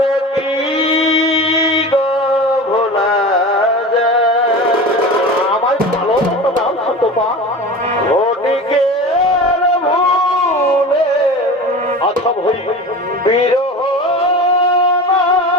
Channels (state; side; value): normal; both; correlation 0.32